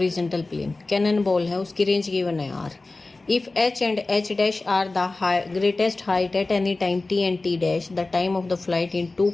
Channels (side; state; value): right; quieter; 3.3 dB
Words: plane. Cannon ball है, उसकी range given है R. If H and H dash are the greatest height at any time T and T dash, the time of the flight in two